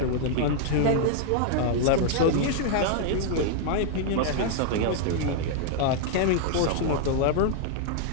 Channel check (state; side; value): different; both; correlation -0.01